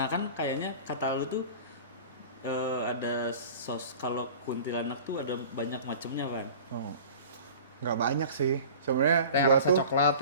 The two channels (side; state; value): both; inverted; correlation -0.40